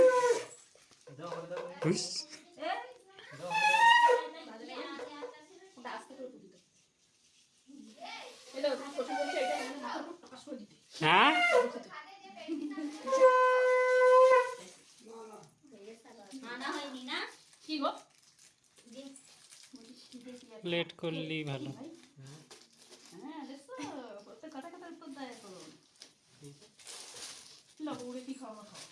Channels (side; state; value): both; identical; correlation 1.00